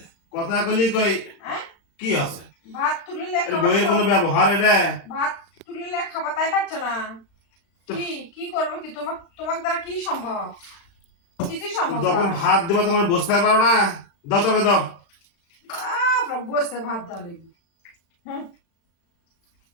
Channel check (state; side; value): late; right; 36 ms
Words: কথা কলি কই কি আছে? ভাত তুলিলে বইয়ের কোনো ব্যবহার এটা? ভাত তুলিলে খাবার তাই পাচ্ছ না। কি করবো কি? তোমার দ্বারা কি সম্ভব? কিছুই সম্ভব। যখন ভাত দেবো তোমার বসতে পারো না, দাও তোকে দাও। বসতে ভাত দাও লেগে